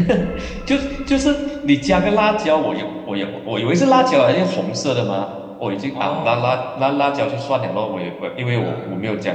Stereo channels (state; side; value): identical; both; correlation 1.00